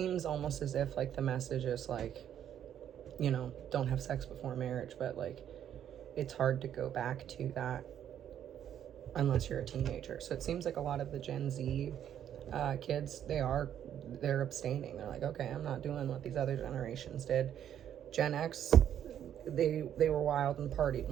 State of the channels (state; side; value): quieter; left; 10.0 dB